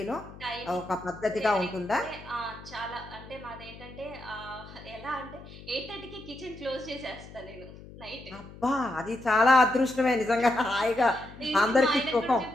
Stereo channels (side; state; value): left; noise; hum, 17 dB below the sound